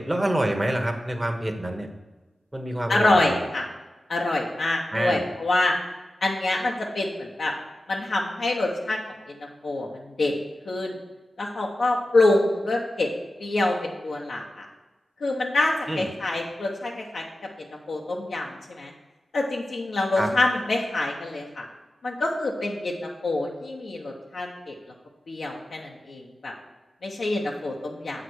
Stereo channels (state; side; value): normal; both; correlation 0.93